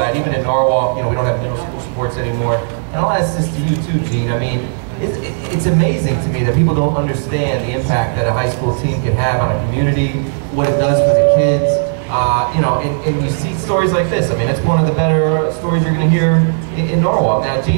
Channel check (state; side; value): silent; left; digital silence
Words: Even in Norwalk, we don't have middle school sports anymore. And I'll ask this to you too, Gene. I mean, it's amazing to me that people don't understand the impact that a high school team can have on a community, what it does for the kids. And you see stories like this. I mean, it's one of the better stories you're going to hear in Norwalk. Now,